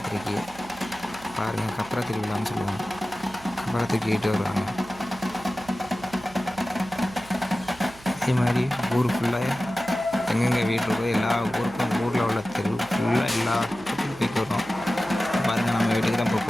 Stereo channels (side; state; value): right; noise; hum, 21 dB below the sound